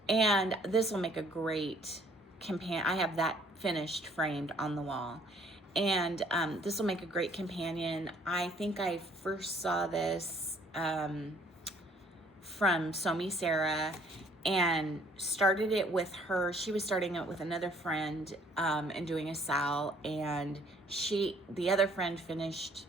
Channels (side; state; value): both; normal; correlation 0.60